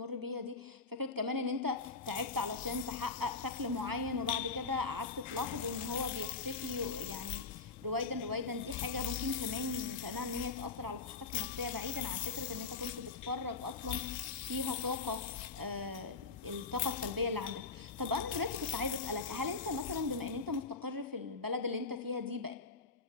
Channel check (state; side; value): quieter; right; 4.3 dB